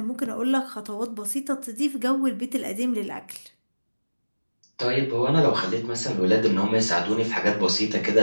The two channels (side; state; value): both; inverted; correlation -1.00